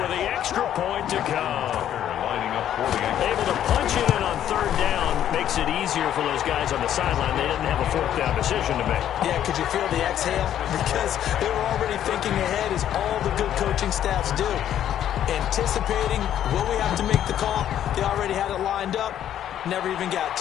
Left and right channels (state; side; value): quieter; right; 10.8 dB